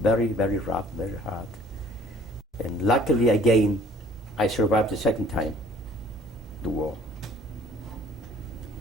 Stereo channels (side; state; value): both; normal; correlation 0.53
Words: very, very rough, very hard. And luckily, again, I survived the second time, the war.